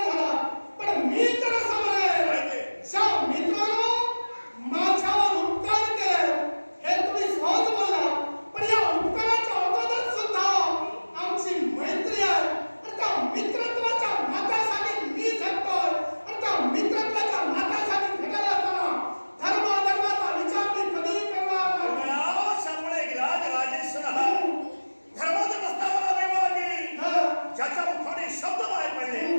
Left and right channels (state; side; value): inverted; both; correlation -1.00